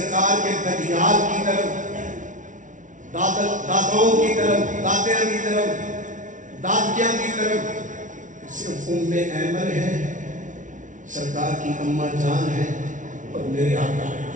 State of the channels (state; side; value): late; left; 0.37 ms